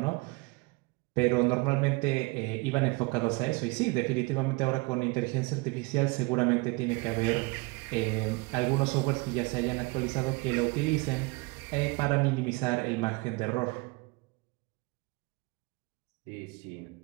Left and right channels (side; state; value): left; quieter; 26.5 dB